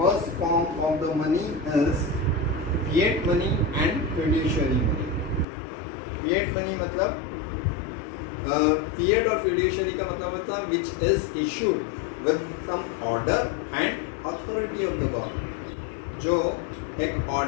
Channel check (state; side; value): drops out; right; at 5.5 s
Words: form of the money is fiat money and fiduciary money. Fiat money मतलब फिएट और फिड्यूशियरी का मतलब होता है which is issued with some order and authority of the government. जो एक